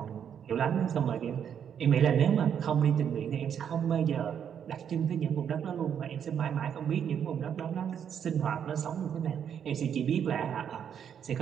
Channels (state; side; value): quieter; left; 8.4 dB